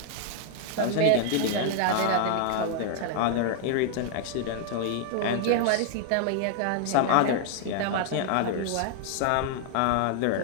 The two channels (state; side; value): different; both; correlation 0.00